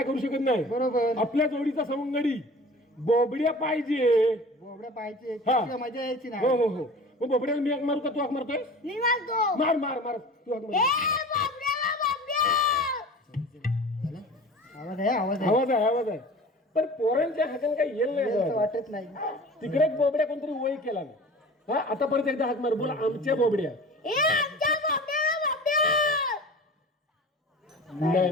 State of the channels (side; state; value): both; normal; correlation 0.39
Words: करू शकत नाही. बरोबर. आपल्या जोडीचा सवंगडी बोबड्या पाहिजे. बोबड्या पाहिजे. हा. तिला मजा यायची हो नाही. हो हो. मग बोबड्याला मी हाक मारू का, तू हाक मारतोय? मी मारतो. मार मार मार, तू हाक ए मार. बाबड्याला बाबड्या. आवाज आहे आवाज आहे. आवाज आहे, आवाज आहे. पण पोरांच्या हाताने काही येईल असं नाही. वाटत नाही. तिकडे एक बोबड्या कोणतरी वय केला ना. हा, आता परत एकदा हाक मार, बोला आमच्या बोबड्या. ए आमच्या बाबड्याला बाबड्या. नाही